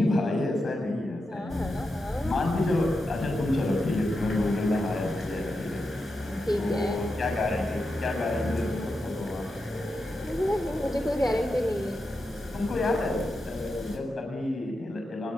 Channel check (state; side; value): normal; both; correlation 0.88